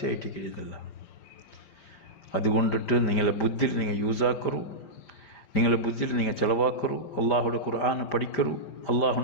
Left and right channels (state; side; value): late; right; 5.0 ms